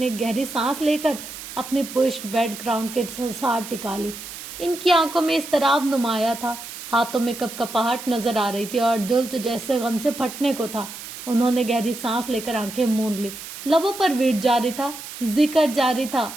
گہری سانس لے کر اپنی پشت بیڈ گراؤنڈ کے ساتھ ٹکا لی. ان کی آنکھوں میں اضطراب نمایاں تھا, ہاتھوں میں کپ کپاہٹ نظر آ رہی تھی اور دل تو جیسے غم سے پھٹنے کو تھا. انہوں نے گہری سانس لے کر آنکھیں موند لی. لبوں پر ویٹ جاری تھا, ذکر جاری تھا,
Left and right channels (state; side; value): noise; right; hiss, 11 dB below the sound